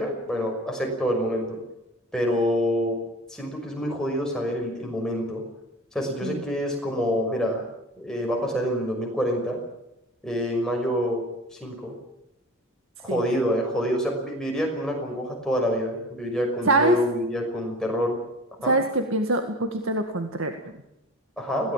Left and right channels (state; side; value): normal; both; correlation 0.38